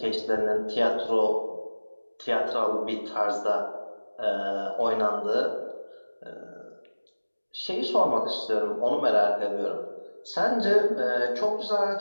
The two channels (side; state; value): both; inverted; correlation -1.00